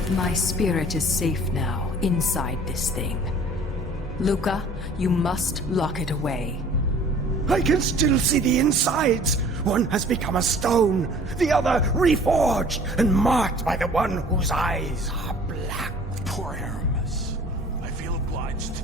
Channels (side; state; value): both; normal; correlation 0.49